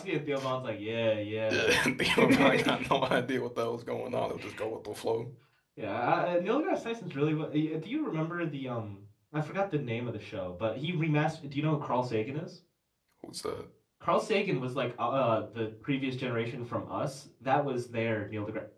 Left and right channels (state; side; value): identical; both; correlation 1.00